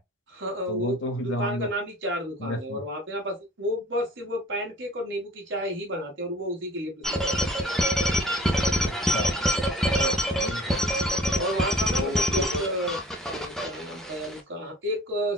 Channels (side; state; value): both; normal; correlation 0.47